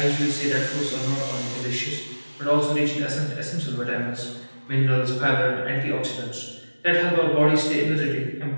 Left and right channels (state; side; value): inverted; both; correlation -1.00